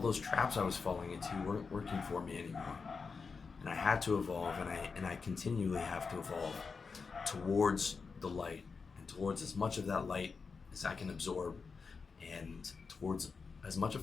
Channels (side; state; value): right; quieter; 5.0 dB